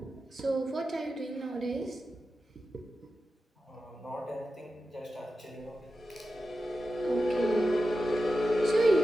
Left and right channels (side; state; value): both; normal; correlation 0.92